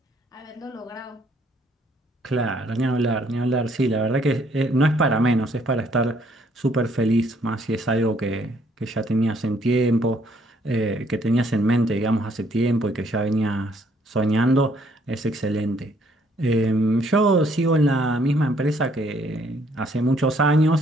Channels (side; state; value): both; normal; correlation 0.66